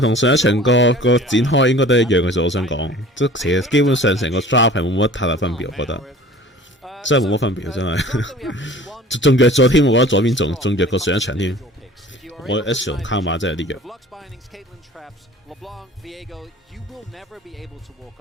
同上一場個展開應該都一樣嘅啫。我想講，即其實基本上成個 draft 係冇乜太大分別，我覺得真係冇乜分別，真係。仲弱咗添，我覺得左邊仲弱過上一場添。我 S 同卡馬真係有啲弱。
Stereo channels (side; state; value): both; normal; correlation 0.45